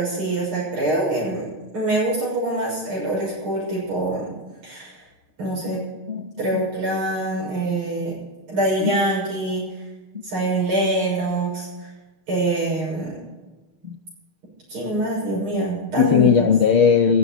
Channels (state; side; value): late; left; 6.5 ms